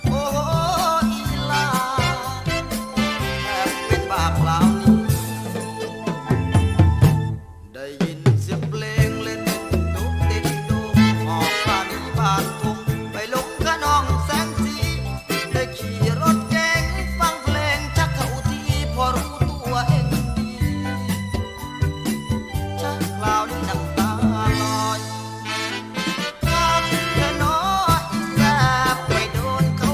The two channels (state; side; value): identical; both; correlation 1.00